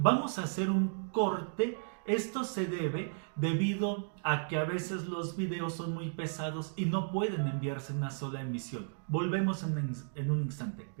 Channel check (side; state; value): left; silent; digital silence